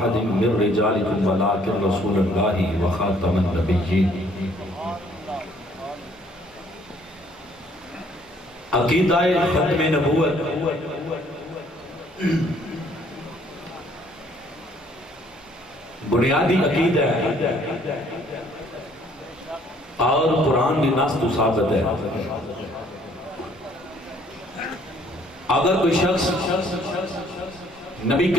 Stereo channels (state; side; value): normal; both; correlation 0.62